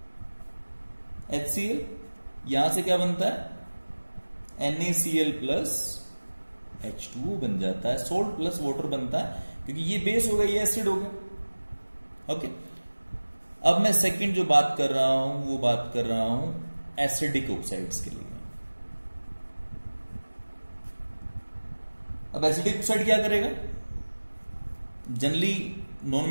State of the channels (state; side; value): inverted; both; correlation -1.00